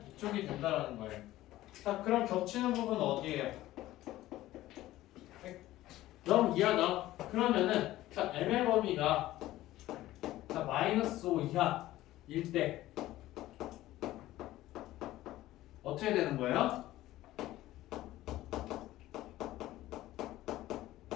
이쪽이 된다라는 거예요. 자, 그럼 겹치는 부분은 어디예요? 0 이하다. 그러면은 자, m의 범위가 자, 마이너스 5 이하일 때 어떻게 되는 거예요?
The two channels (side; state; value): right; quieter; 15.6 dB